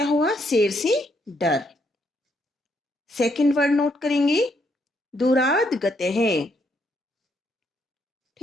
हुआ? शेर से डर। सेकंड वर्ड नोट करेंगे, दूराद गते हैं।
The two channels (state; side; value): normal; both; correlation 0.74